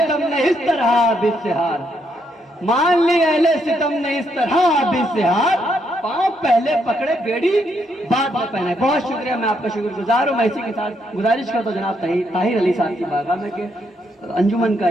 ने इस तरह आबिद से हार, मान ली अहले सितम ने इस तरह आबिद से हार, पाँव पहले पकड़े बेड़ी बाद में पहने। बहुत शुक्रिया, मैं आपका शुक्रगुजार हूँ। मैं इसी के साथ गुजारिश करता हूँ जनाब ताहिर अली साहब की बारगाह में कि अंजुमन का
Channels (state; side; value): normal; both; correlation 0.76